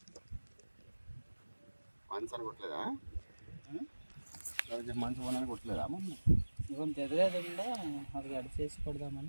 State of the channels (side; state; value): both; inverted; correlation -1.00